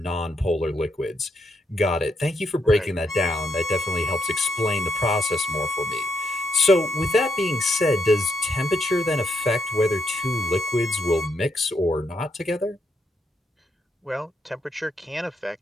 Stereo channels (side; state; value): both; normal; correlation 0.78